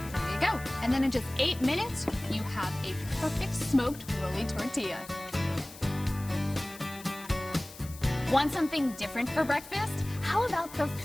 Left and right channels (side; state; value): left; noise; hiss, 17 dB below the sound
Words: you go. And then in just 8 minutes, you have a perfect smoked rolly tortilla. Want something different for breakfast? How about the